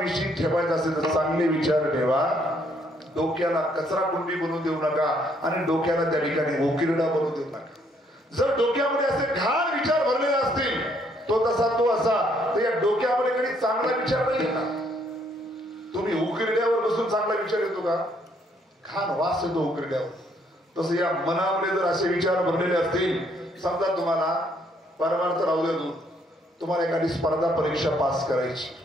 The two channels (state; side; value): normal; both; correlation 0.68